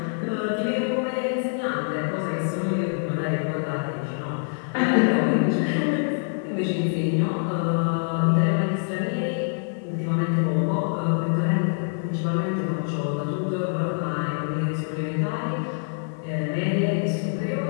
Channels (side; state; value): right; silent; 58 dB below the other